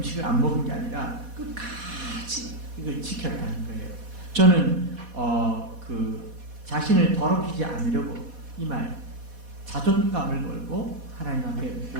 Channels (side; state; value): left; late; 4.1 ms